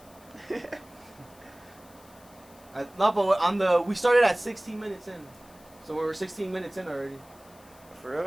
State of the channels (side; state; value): left; noise; hiss, 26 dB below the sound